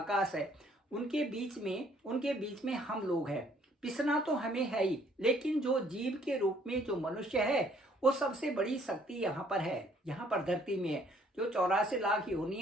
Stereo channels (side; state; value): both; normal; correlation 0.63